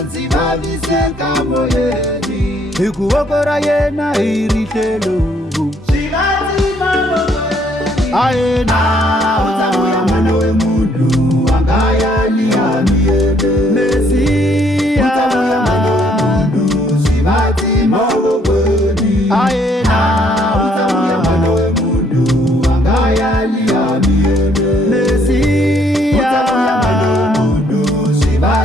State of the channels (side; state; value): both; normal; correlation 0.66